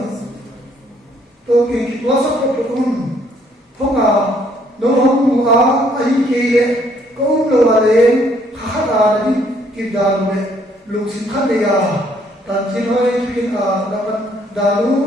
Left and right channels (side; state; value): both; normal; correlation 0.66